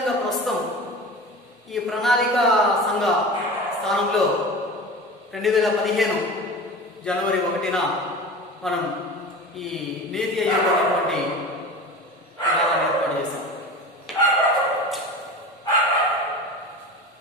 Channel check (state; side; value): normal; both; correlation 0.33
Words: ప్రస్తుతం ఈ ప్రణాళిక సంఘ స్థానంలో 2015 జనవరి 1న మనం ఈ నీతి ఆయోగ్ అనేటువంటి విధానాన్ని ఏర్పాటు చేశాం.